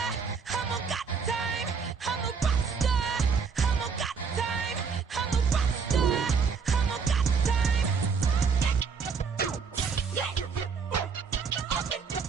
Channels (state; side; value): quieter; left; 5.7 dB